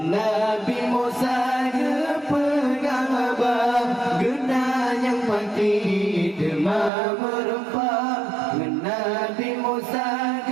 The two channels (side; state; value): left; drops out; at 6.9 s